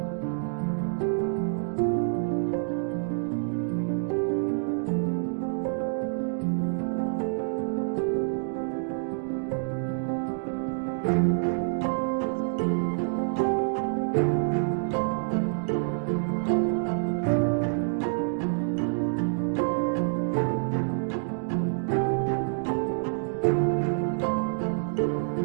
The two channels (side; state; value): left; silent; digital silence